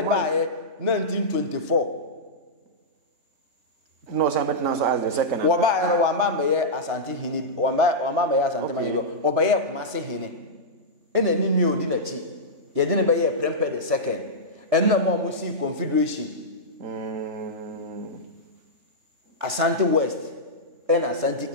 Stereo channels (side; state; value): left; late; 3.4 ms